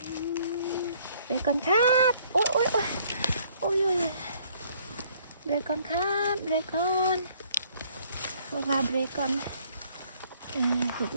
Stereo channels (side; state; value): both; inverted; correlation -0.62